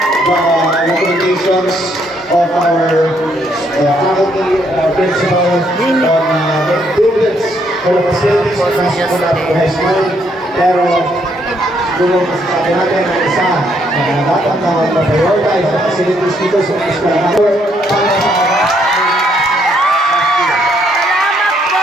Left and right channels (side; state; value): both; normal; correlation 0.71